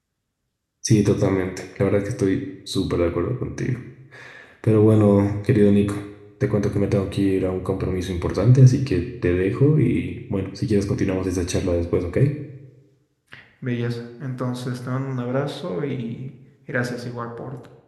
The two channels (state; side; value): identical; both; correlation 1.00